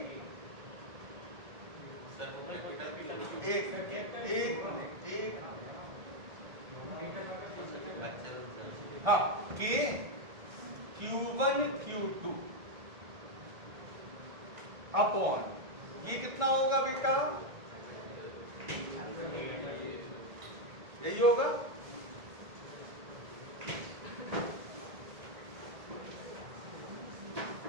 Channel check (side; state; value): left; late; 1.6 ms